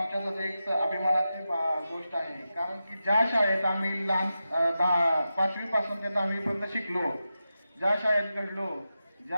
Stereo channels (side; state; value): both; inverted; correlation -0.91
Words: एक अभिमानाची गोष्ट आहे. कारण की ज्या शाळेत आम्ही लहान 5वी पासून ते 10वी पर्यंत शिकलो, ज्या शाळेत घडलो,